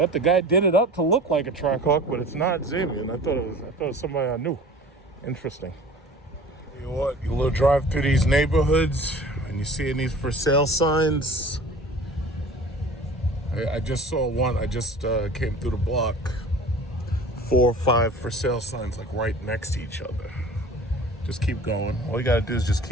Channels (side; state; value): both; normal; correlation 0.43